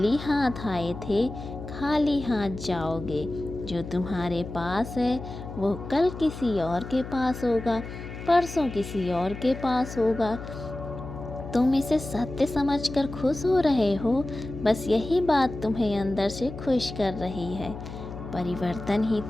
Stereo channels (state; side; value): noise; left; hum, 10 dB below the sound